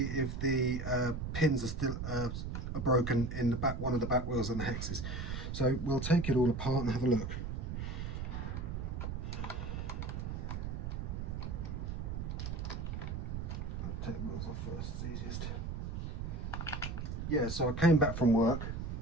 if the pins are still are broken in the back, one of the back wheels and the hexes. So we'll take it all apart and have a look. I'll take the wheels off first, it's easiest. Yeah, so I came back from work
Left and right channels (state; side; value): noise; right; rumble, 4 dB below the sound